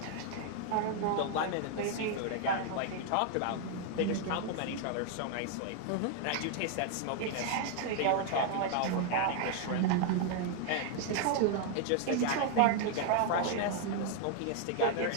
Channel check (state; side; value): different; both; correlation 0.00